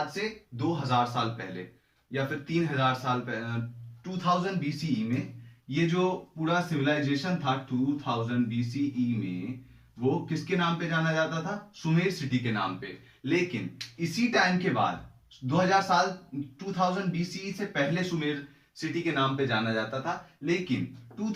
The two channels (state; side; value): identical; both; correlation 1.00